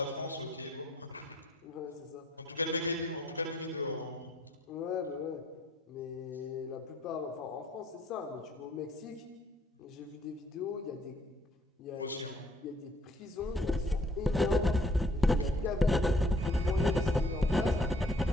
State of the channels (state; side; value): normal; both; correlation 0.62